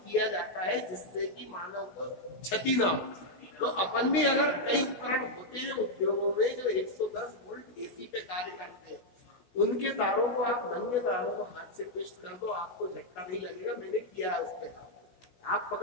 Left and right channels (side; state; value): right; late; 16 ms